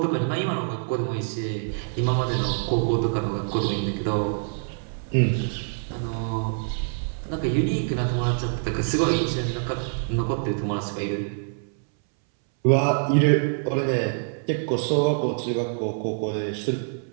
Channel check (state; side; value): silent; left; 61 dB below the other